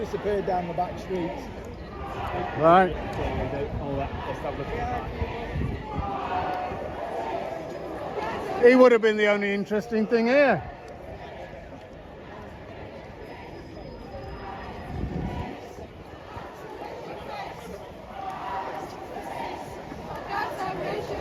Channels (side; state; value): both; identical; correlation 1.00